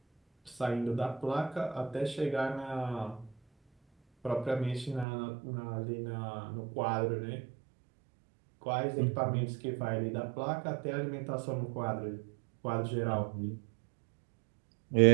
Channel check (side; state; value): left; drops out; at 5.1 s